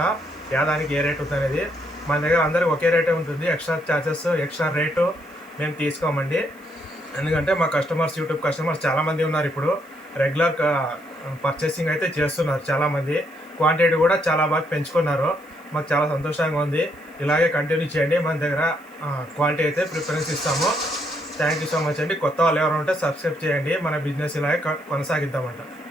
దానికి ఏ రేట్ ఉంటుంది అనేది. మన దగ్గర అందరికి ఒకే రేటే ఉంటుంది. ఎక్స్ట్రా ఛార్జెస్, ఎక్స్ట్రా రేటు మేము తీసుకోమండి. ఎందుకంటే మా యూట్యూబ్ కస్టమర్స్ చాలామంది ఉన్నారు. ఇప్పుడు రెగ్యులర్ పర్చేసింగ్ అయితే చేస్తున్నారు చాలామంది. క్వాంటిటీ కూడా చాలా బాగా పెంచుకున్నారు. మాకు చాలా సంతోషంగా ఉంది. ఇలాగే కంటిన్యూ చేయండి. మన దగ్గర క్వాలిటీ అయితే ప్రిఫరెన్స్ ఇస్తాము. థ్యాంక్ యూ సో మచ్ అండి. కొత్త వాళ్ళు ఎవరు ఉంటే సబ్స్క్రైబ్ చేయండి. మన బిజినెస్ ఇలాగే కొనసాగిద్దామంట.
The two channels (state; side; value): noise; left; hiss, 29 dB below the sound